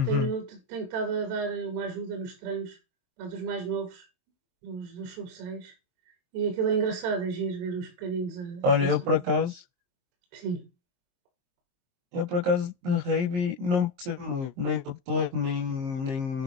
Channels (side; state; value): left; late; 22 ms